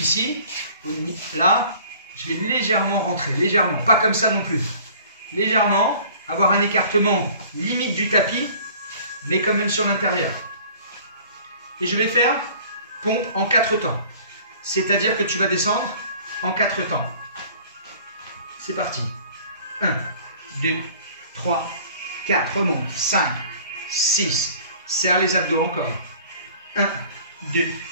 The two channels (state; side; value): inverted; both; correlation -0.50